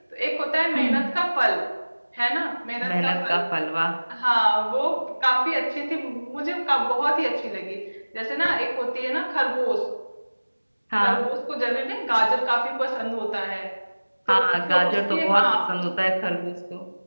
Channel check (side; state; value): both; inverted; correlation -1.00